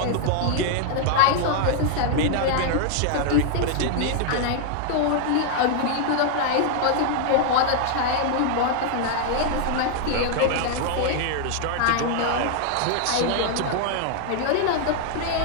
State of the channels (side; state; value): both; different; correlation 0.00